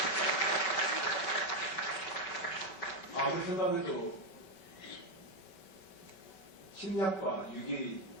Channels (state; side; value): late; right; 5.2 ms